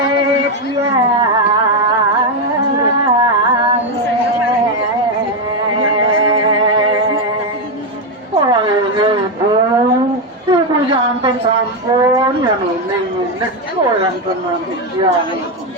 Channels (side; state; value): both; normal; correlation 0.06